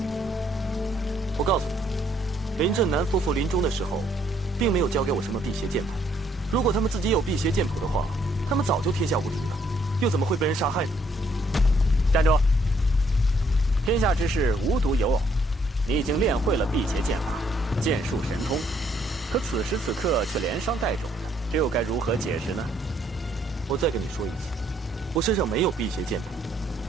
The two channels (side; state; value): both; normal; correlation 0.68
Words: 我告诉你，林震南夫妇临终的时候，并没有交给我什么辟邪剑谱。如果他们自己有辟邪剑谱的话，他们早就天下无敌了，又怎么会被人杀害呢？站住！天下之事无独有偶，你已经练会了辟邪剑法，剑术神通，可此时此刻却连伤带肿的，这又该如何解释呢？我再跟你说一次，我身上没有辟邪剑谱。